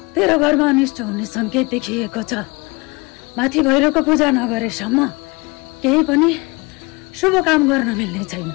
तेरो घरमा अनिष्ट हुने संकेत देखिएको छ माथि भैरवको पूजा नगरेसम्म केही पनि शुभ काम गर्न मिल्ने छैन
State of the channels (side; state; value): right; quieter; 26.1 dB